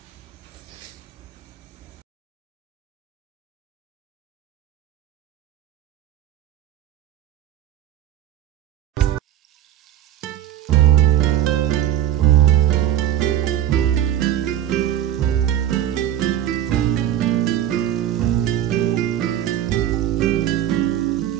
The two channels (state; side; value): quieter; left; 11.7 dB